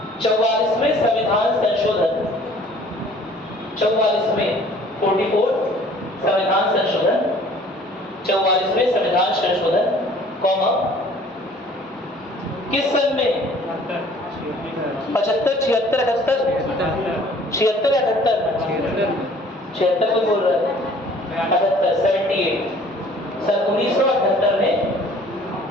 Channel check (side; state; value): both; normal; correlation 0.53